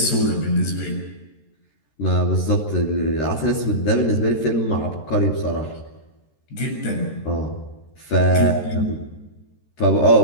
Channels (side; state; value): right; late; 13 ms